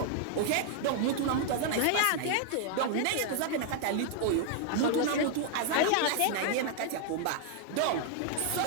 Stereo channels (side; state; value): both; different; correlation 0.00